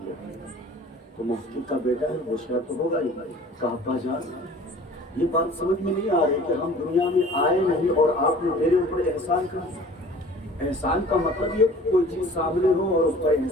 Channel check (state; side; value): normal; both; correlation 0.46